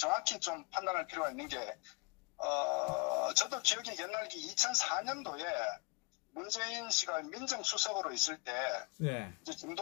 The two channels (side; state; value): right; quieter; 28.2 dB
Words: 좀 판단할 필요가 있는 게 저도 기억이 옛날기 2004년도에 문재인 씨가 민정수석으로 있을 때 예. 이제